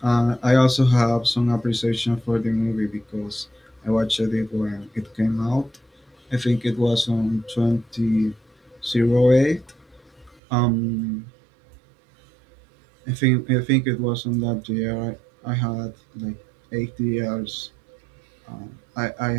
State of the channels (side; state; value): left; drops out; at 10.4 s